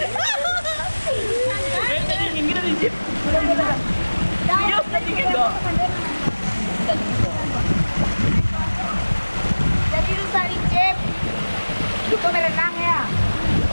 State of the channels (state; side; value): inverted; both; correlation -1.00